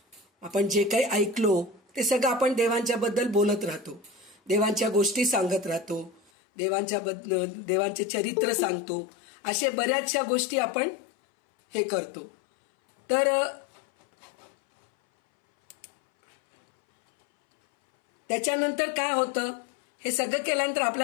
आपण जे काही ऐकलो ते सगळं आपण देवांच्या बद्दल बोलत राहतो, देवांच्या गोष्टी सांगत राहतो, देवांचे चरित्र सांगतो, असे बऱ्याचशा गोष्टी आपण हे करतो. तर त्याच्यानंतर काय होतं, हे सगळं केल्यानंतर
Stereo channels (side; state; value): right; drops out; at 6.2 s